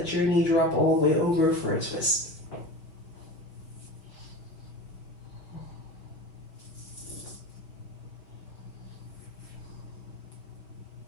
your knee drop all the way over for a twist.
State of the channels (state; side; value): late; right; 5.7 ms